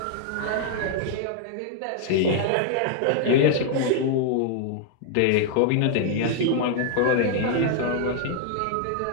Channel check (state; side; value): different; both; correlation -0.01